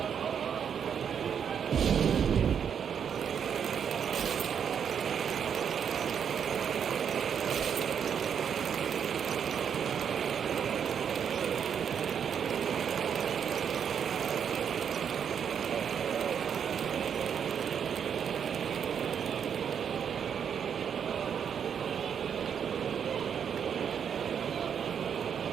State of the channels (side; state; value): left; quieter; 7.7 dB